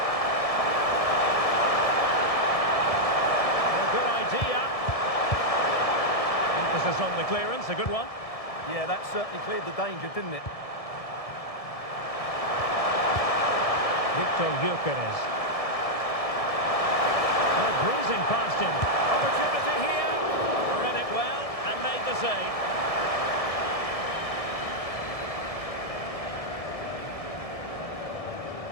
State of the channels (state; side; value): late; right; 1.7 ms